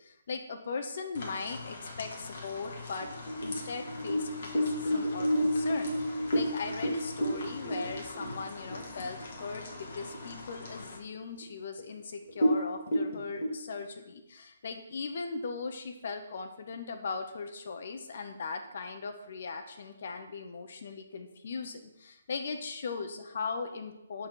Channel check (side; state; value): both; inverted; correlation -0.83